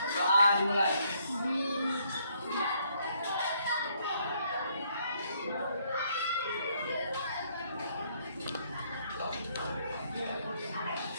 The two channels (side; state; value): both; inverted; correlation -0.69